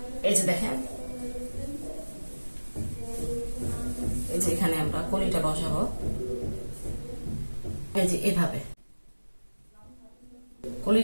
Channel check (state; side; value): inverted; both; correlation -1.00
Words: এই যে দেখেন, এই যে এখানে আমরা কলিটা বসাবো, এই যে এভাবে